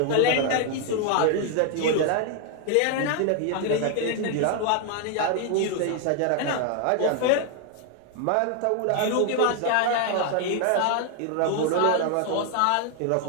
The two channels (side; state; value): both; different; correlation 0.00